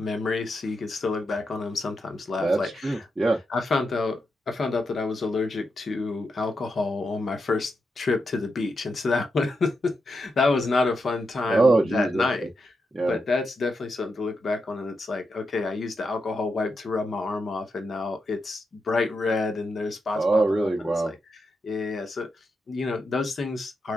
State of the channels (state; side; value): normal; both; correlation 0.85